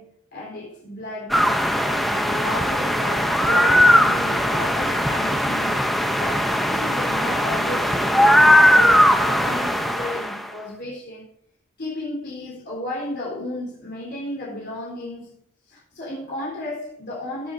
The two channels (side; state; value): both; normal; correlation 0.86